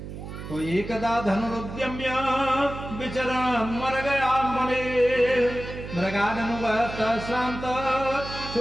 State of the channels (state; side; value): noise; right; hum, 10 dB below the sound